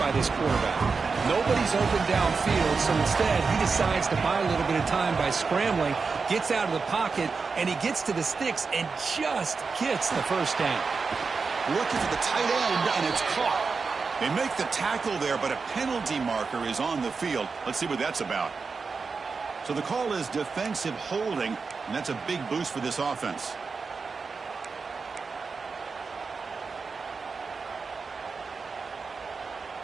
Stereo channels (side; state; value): left; quieter; 4.8 dB